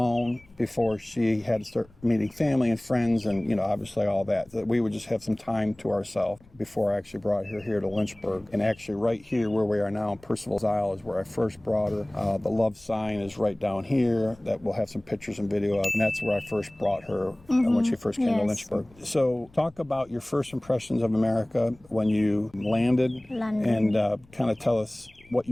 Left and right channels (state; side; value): noise; left; rumble, 28 dB below the sound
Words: before she had to start meeting family and friends and, obviously all that we would just have some time to ourselves before I actually brought her here to Lynchburg. And actually right here where we are now in Percival's Isle is where I first brought her. The love sign is right down here that we'll have some pictures and video of. And that's where I first brought her when she first came to Lynchburg. So talk about your first impressions of America when you landed. And kind of tell us what